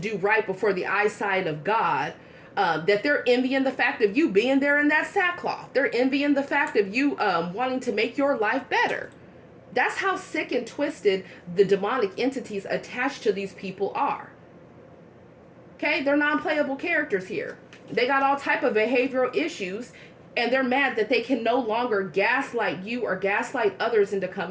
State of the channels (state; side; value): identical; both; correlation 1.00